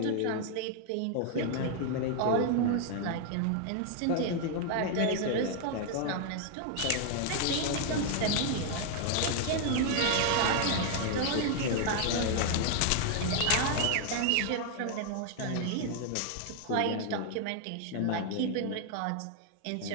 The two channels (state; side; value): different; both; correlation 0.00